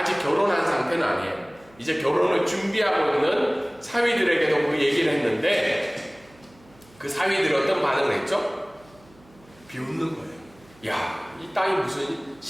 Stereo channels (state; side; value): noise; right; hum, 28 dB below the sound